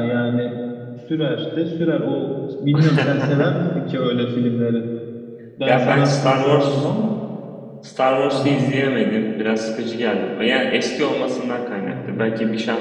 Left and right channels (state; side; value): identical; both; correlation 1.00